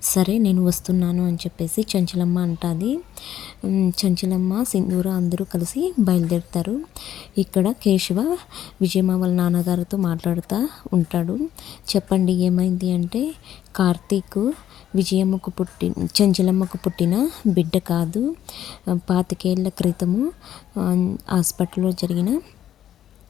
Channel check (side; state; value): right; quieter; 11.1 dB